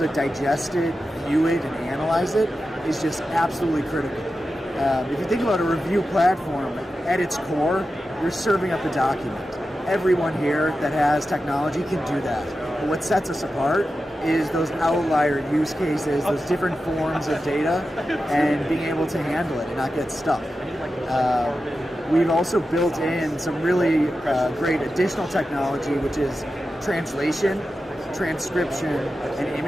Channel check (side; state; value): both; normal; correlation 0.92